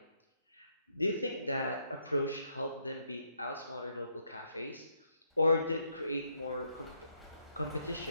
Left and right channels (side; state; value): both; inverted; correlation -0.75